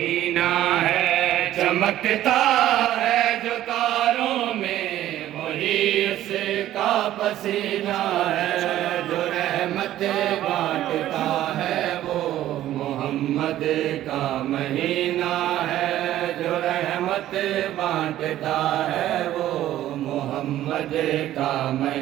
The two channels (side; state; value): left; quieter; 13.3 dB